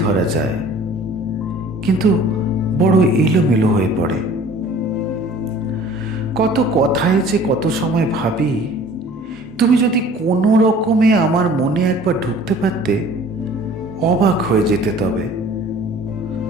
যায়, কিন্তু বড় এলোমেলো হয়ে পড়ে। কত কথায় যে কত সময় ভাবি, তুমি যদি কোনো রকমে আমার মনে একবার ঢুকতে পারতে, অবাক হয়ে যেতে। তবে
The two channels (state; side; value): normal; both; correlation 0.49